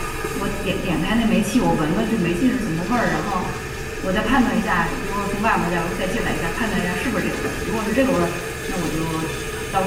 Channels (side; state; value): both; identical; correlation 1.00